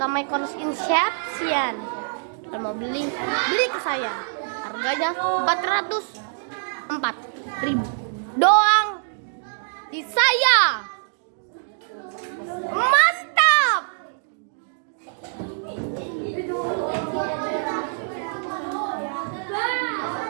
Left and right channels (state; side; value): silent; left; digital silence